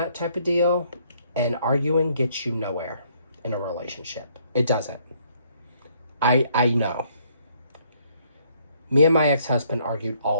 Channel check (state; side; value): inverted; both; correlation -0.67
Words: type of deal. And arguing gets you nowhere in a relationship. It doesn't. I know. Me and my ex-husband argued